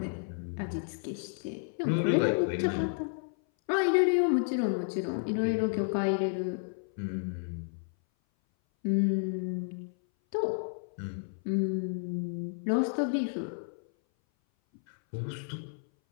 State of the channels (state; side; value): silent; right; 57 dB below the other